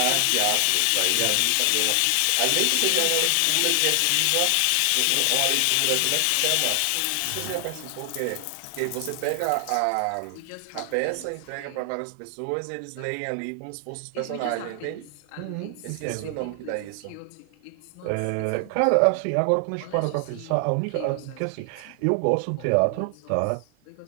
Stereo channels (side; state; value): both; different; correlation 0.00